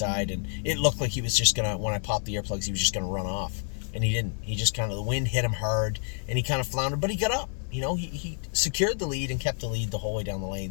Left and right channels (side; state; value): right; silent; 59 dB below the other